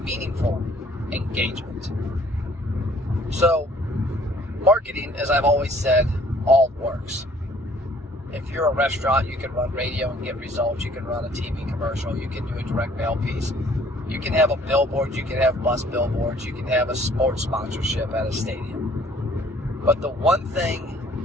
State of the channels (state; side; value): normal; both; correlation 0.58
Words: meaningful engagement. So, marketing, as I've always said, all works. If you're a restaurant, you can run radio and get results. You can run a TV commercial. You can do a direct mail piece. You can have a billboard. You can have bus billboards. You can have a sports sponsorship at a stadium. But the one